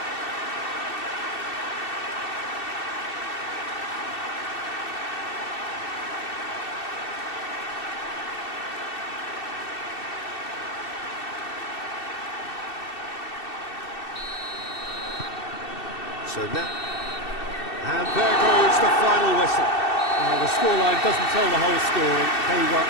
So now, and there goes the final whistle. The scoreline doesn't tell the whole story. They were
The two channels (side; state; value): right; late; 2.7 ms